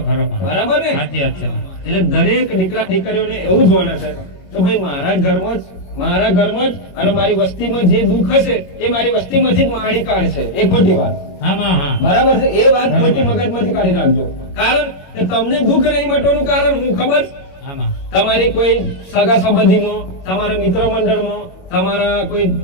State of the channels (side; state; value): right; late; 21 ms